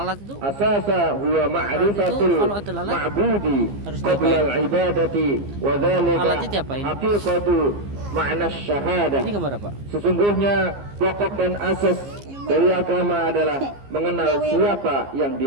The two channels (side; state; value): left; late; 15 ms